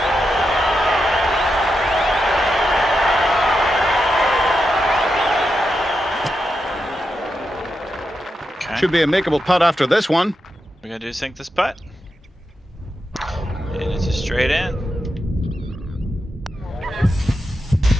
Okay. Should be a makeable putt after this one. We gotta do is sink this putt. And it's just straight in.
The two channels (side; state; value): both; normal; correlation 0.87